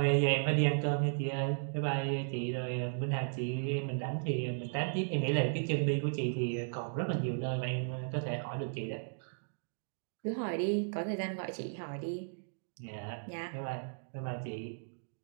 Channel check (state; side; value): silent; left; digital silence